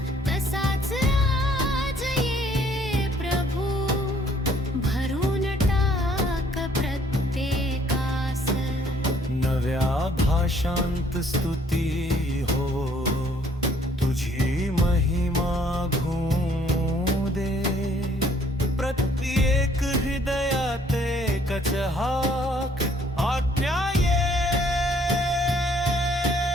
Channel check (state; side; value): normal; both; correlation 0.62